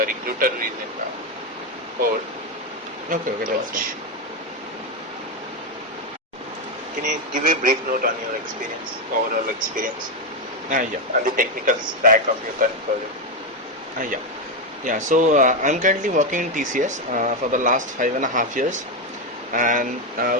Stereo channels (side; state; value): both; normal; correlation 0.07